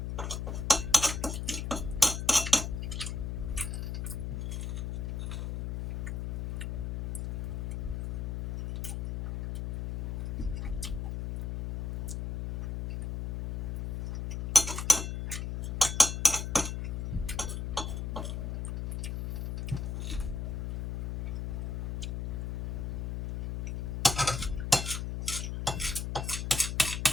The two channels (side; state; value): left; noise; hum, 2 dB below the sound